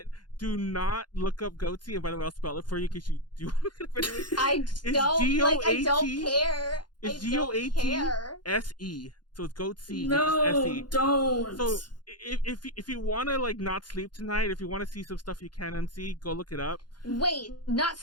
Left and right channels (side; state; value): right; late; 0.71 ms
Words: do not look up goatee, and by the way, I'll spell it for you in case you do want to look up anyway. I don't care. It's GOATSE. So it's goatee. No, S-E. don't. So if you want to like not sleep tonight, if you want to see some stuff you can unsee, go look it up. Wait,